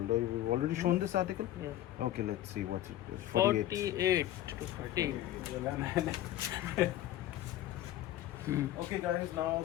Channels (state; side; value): quieter; right; 13.6 dB